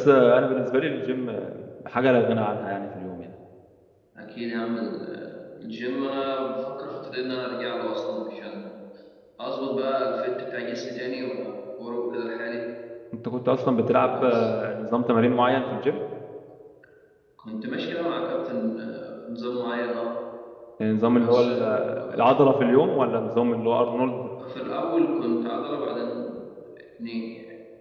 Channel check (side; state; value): both; identical; correlation 1.00